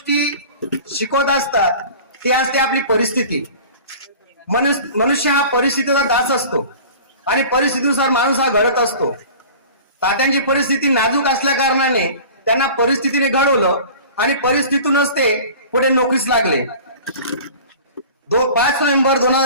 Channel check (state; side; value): inverted; both; correlation -0.41